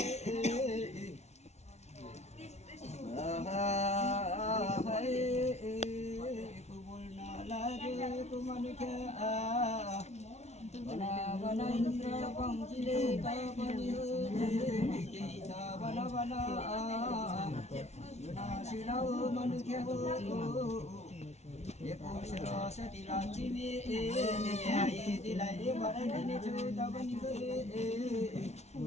एको बोल्न लागेको मनुष्य बना इन्द्र पङ्क्तिले तपनि केही छ बना सुनाऊ मनुष्य हो एको सरस्वती लक्ष्मी दिलाई भराइदिनेछु तपनि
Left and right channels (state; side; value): late; right; 0.32 ms